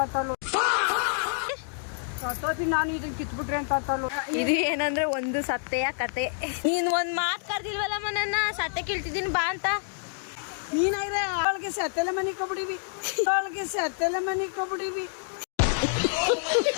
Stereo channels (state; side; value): silent; right; digital silence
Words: ಅಂತ ಇದು ಏನಂದ್ರೆ ಒಂದು ಸತ್ತೆಯ ಕತೆ. ನೀನ್ ಒಂದ್ ಮಾತು ಕರ್ದಿಲ್ವಲ್ಲಮ್ಮ ನನ್ನ ಸತ್ತೆ ಕೀಳ್ತಿದ್ದೀನಿ ಬಾ ಅಂತ. ನೀನಾಗ್ರೆ ಅವಳಿಗೆ ಸತ್ತೆಲ್ಲ ಮನೆ ಕೊಬಿಡಿವಿ